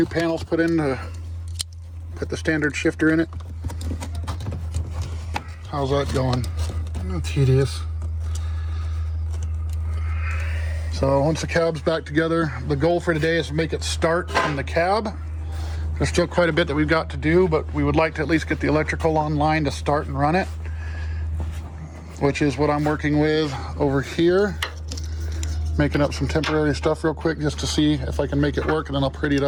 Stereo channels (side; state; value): both; identical; correlation 1.00